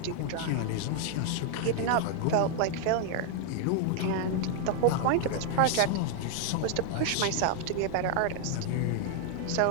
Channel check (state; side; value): different; both; correlation 0.00